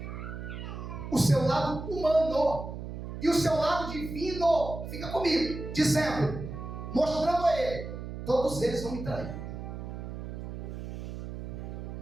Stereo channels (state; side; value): noise; right; hum, 8 dB below the sound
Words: o seu lado humano, e o seu lado divino fica comigo, dizendo, mostrando a ele: todos eles vão me trair,